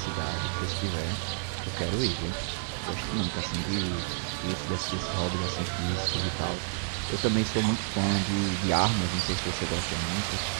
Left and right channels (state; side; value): silent; left; digital silence